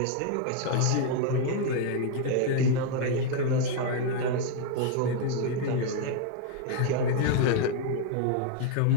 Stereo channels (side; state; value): both; different; correlation 0.00